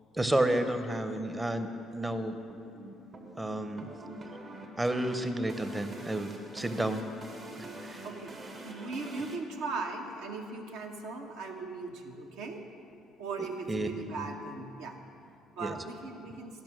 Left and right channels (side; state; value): both; normal; correlation 0.82